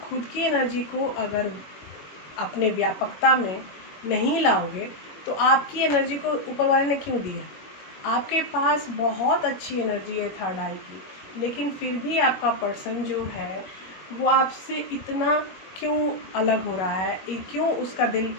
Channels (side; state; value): right; late; 21 ms